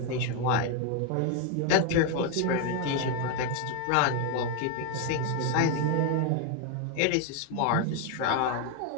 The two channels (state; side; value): different; both; correlation 0.01